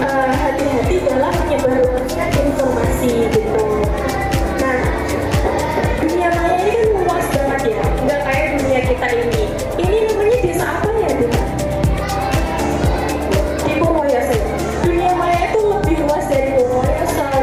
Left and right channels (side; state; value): both; identical; correlation 1.00